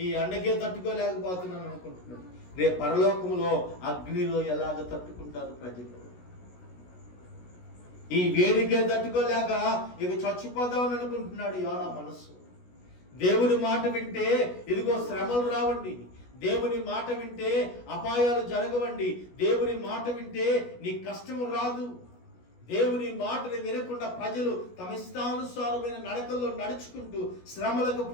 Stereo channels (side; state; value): right; late; 16 ms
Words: ఈ ఎండకే తట్టుకోలేకపోతున్నాను అనుకుంటున్నాడు. రేపు పరలోకములో అగ్నిలో ఎలాగ తట్టుకుంటారు ప్రజలు? ఈ వేడికే తట్టుకోలేక ఇక చచ్చిపోదామని అనుకుంటున్నాడు యోనా మనస్సు. దేవుని మాట వింటే ఇదిగో శ్రమలు రావండి, దేవుని మాట వింటే అపాయాలు జరగవండి, దేవుని మాట వింటే నీ కష్టము రాదు. దేవుని మాటని వినకుండా ప్రజలు తమ ఇష్టానుసారమైన నడకల్లో నడుచుకుంటూ శ్రమలకు